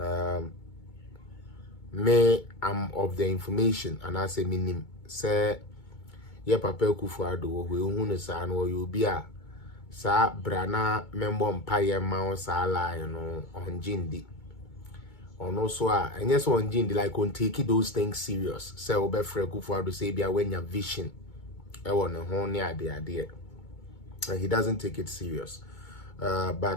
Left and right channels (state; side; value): late; right; 2.2 ms